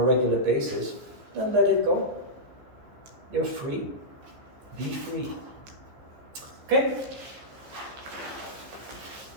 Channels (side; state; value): left; late; 15 ms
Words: regular basis, then let it go. You're free. Be free. Okay?